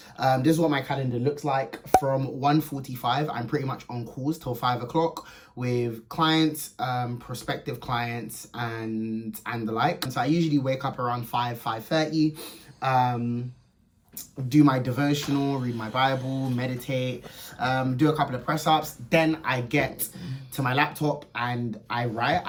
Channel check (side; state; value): both; identical; correlation 1.00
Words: This is what my calendar looks like. From 1:45, I'm pretty much on calls till 5 o'clock with clients, prospective clients, and the like. And so I usually wake up around 5:30. Do my devotional, read my Bible, meditate, do a couple of press ups. Then I get to my laptop and I write.